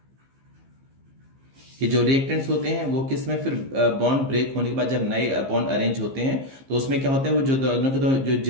कि जो रिएक्टेंट्स होते हैं वो किस में, फिर बॉन्ड ब्रेक होने के बाद जब नए बॉन्ड अरेंज होते हैं तो उसमें क्या होता है, वो जो दोनों के जो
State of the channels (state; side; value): late; left; 15 ms